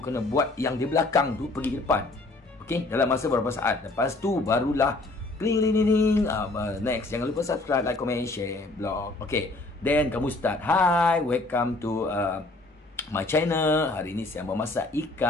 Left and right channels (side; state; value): right; quieter; 3.0 dB